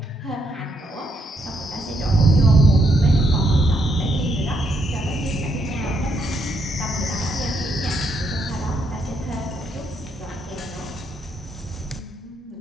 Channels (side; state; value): both; normal; correlation 0.76